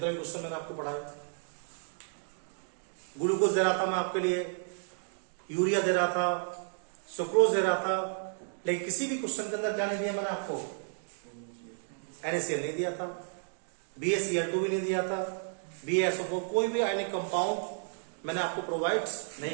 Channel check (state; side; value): silent; left; digital silence